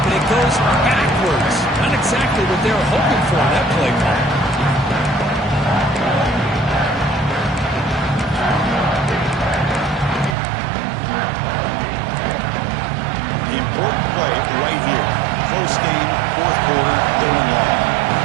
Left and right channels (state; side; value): drops out; left; at 10.4 s